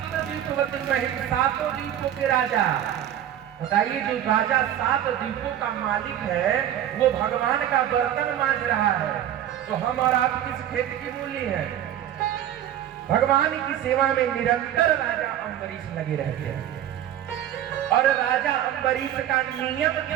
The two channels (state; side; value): quieter; left; 11.3 dB